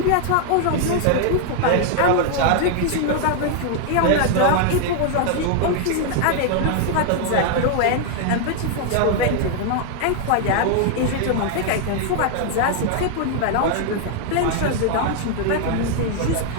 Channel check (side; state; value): both; different; correlation 0.00